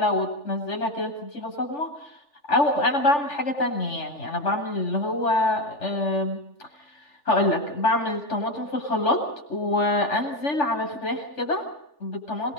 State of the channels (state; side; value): late; right; 3.4 ms